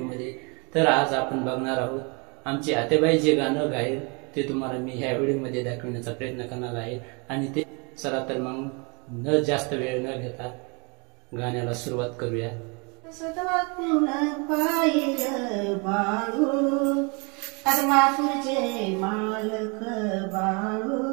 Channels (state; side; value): quieter; left; 31.7 dB